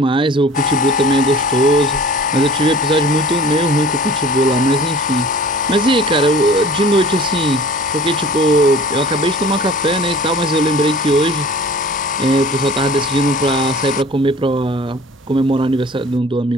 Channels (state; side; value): normal; both; correlation 0.44